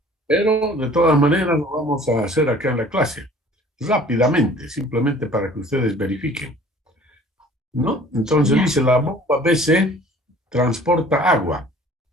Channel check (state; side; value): normal; both; correlation 0.50